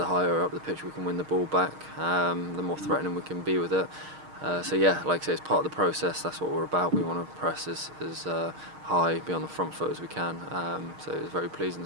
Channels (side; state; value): left; late; 6.5 ms